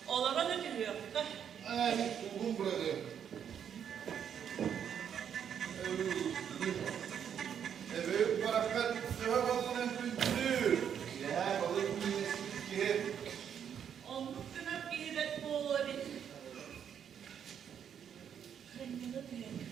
olarak ödülüyor. Ay, buldum burada. Evet, barakat, cevap alın kültür. Ya, balık yiyesi ki. Onun günah giyiret bu olur. Kendine de.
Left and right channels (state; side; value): quieter; left; 8.5 dB